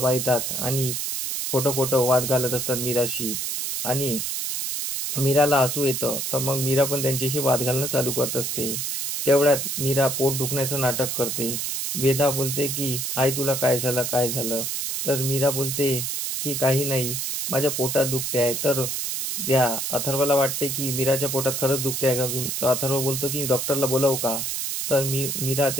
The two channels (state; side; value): noise; right; hiss, 2 dB below the sound